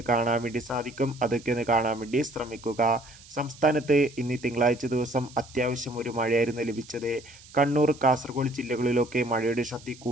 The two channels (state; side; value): noise; right; hiss, 21 dB below the sound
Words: കാണാൻ വേണ്ടി സാധിക്കും. അതൊക്കെ ഒന്ന് കാണാൻ വേണ്ടി ശ്രമിക്കുക. സംസ്ഥാനത്ത് ഇന്ന് തിങ്കളാഴ്ച ദിവസം അത്യാവശ്യം ഒരു മഴയായിരുന്നു ലഭിച്ചത്. കണ്ണൂർ, കാസർഗോഡ് ജില്ലകളിലൊക്കെ മഴയുടെ ശക്തി